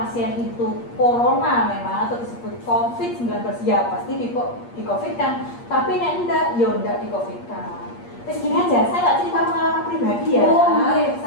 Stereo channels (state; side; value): late; right; 8.5 ms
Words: itu corona memang atau disebut COVID-19 ya pasti di COVID kan, tapi nek enggak ya enggak di COVID kan. Terus gini aja, saya nggak cerita pengalaman pribadi ya,